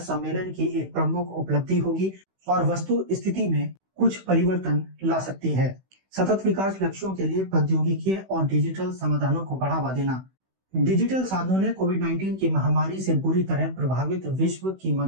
की एक प्रमुख उपलब्धि होगी और वस्तु स्थिति में कुछ परिवर्तन ला सकती है। सतत विकास लक्ष्यों के लिए प्रौद्योगिकी और डिजिटल समाधानों को बढ़ावा देना। डिजिटल साधनों ने कोविड-19 की महामारी से बुरी तरह प्रभावित विश्व की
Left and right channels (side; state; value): left; late; 16 ms